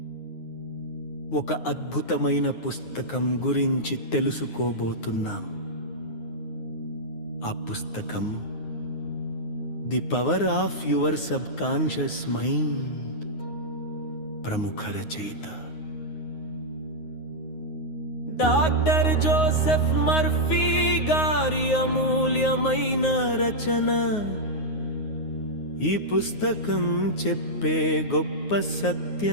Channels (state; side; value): late; right; 9.5 ms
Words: ఒక అద్భుతమైన పుస్తకం గురించి తెలుసుకోబోతున్నాం. ఆ పుస్తకం the power of your sub conscious mind. ప్రముఖ రచయిత డాక్టర్ జోసెఫ్ మర్ఫీ గారి అమూల్యమైన రచన. ఈ పుస్తకం చెప్పే గొప్ప